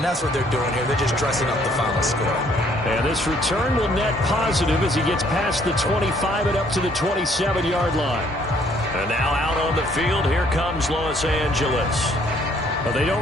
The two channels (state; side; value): normal; both; correlation 0.64